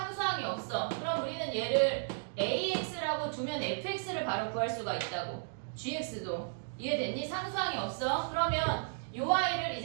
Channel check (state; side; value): silent; left; digital silence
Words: 없어. 그럼 우리는 얘를 AX라고 두면 FX를 바로 구할 수가 있다고. GX도. 이해됐니? 상수항이 없어. 그러면 요 아이를